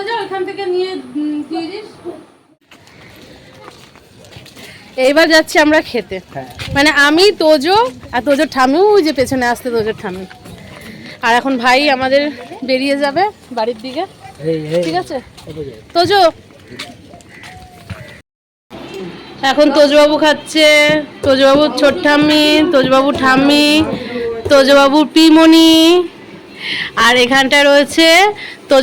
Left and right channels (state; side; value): identical; both; correlation 1.00